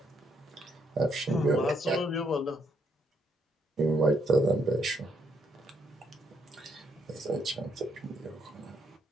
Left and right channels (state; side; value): normal; both; correlation 0.73